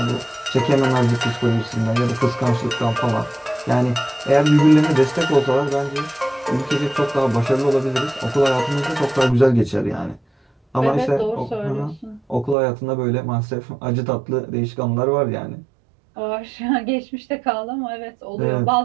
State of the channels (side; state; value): left; drops out; at 12.6 s